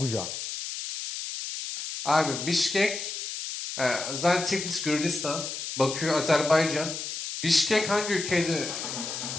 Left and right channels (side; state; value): left; noise; hiss, 6 dB below the sound